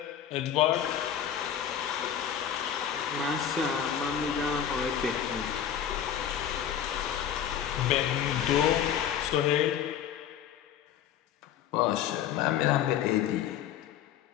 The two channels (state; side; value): quieter; right; 9.4 dB